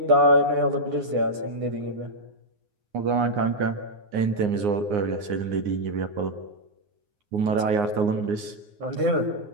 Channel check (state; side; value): late; left; 9.7 ms